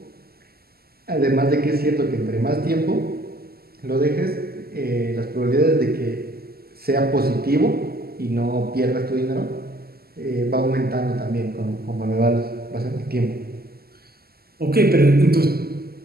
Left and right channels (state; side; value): late; left; 0.45 ms